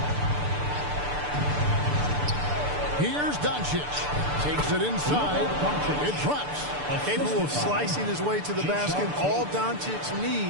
Here's Doncic. Takes it inside. It drops. Capable of slicing his way to the basket. All Doncic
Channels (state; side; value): late; left; 6.8 ms